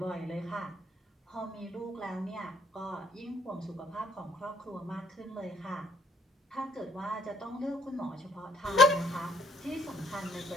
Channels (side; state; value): both; normal; correlation 0.65